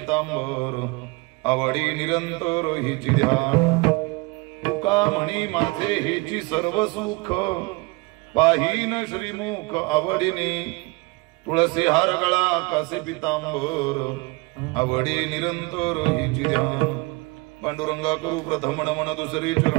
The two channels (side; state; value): left; quieter; 26.2 dB